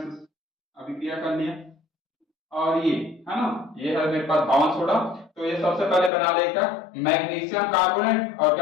अभिक्रिया कर लिया। और ये है ना, ये है मेरे पास धावन सोडा। तो ये सबसे पहले बना लेगा मैग्नीशियम कार्बोनेट और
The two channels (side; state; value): right; drops out; at 6.1 s